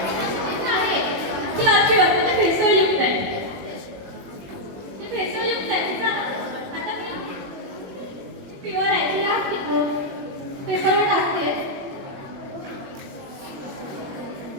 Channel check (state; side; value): late; left; 21 ms